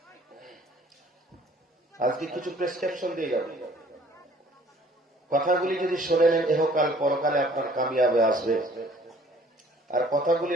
আজকে কিছু প্রেসক্রিপশন দিয়ে যাবে, কথাগুলি যদি শুনে নেন এহকাল পরকালে আপনার কামিয়াবে আসবে, আর কথাগুলি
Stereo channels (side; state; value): both; normal; correlation 0.55